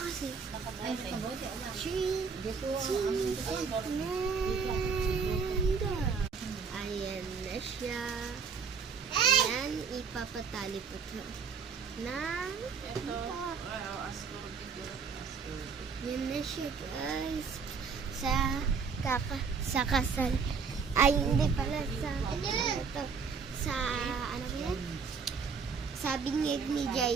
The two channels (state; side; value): quieter; left; 5.6 dB